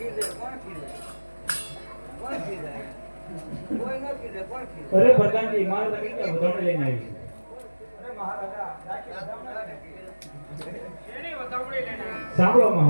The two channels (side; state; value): both; inverted; correlation -1.00